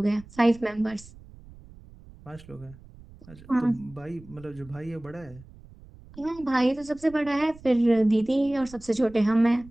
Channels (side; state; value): right; noise; rumble, 21 dB below the sound